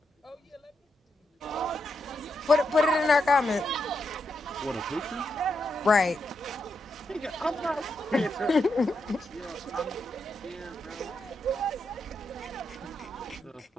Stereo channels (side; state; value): both; normal; correlation 0.83